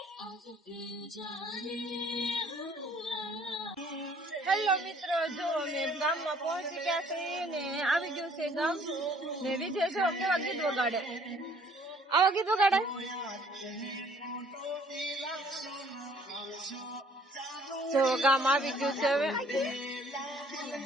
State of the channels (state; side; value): normal; both; correlation 0.58